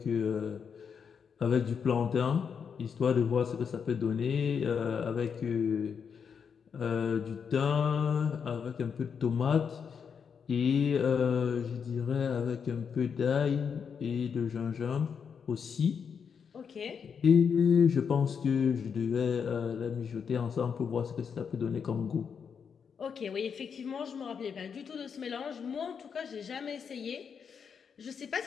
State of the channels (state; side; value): quieter; right; 6.7 dB